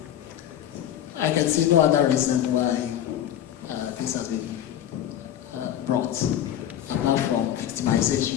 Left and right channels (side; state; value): right; quieter; 11.1 dB